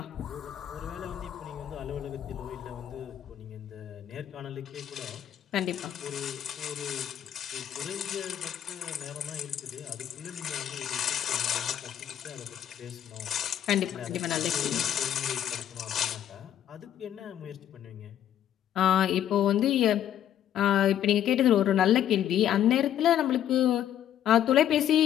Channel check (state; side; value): quieter; right; 10.7 dB